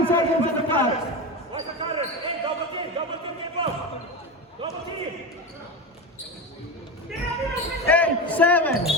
seconds on the clock. Watch the cutters. Hey, double team, get close. Double team. 8, 7.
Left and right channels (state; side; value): normal; both; correlation 0.20